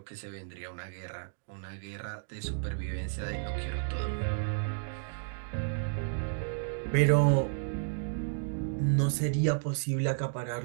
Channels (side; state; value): left; silent; digital silence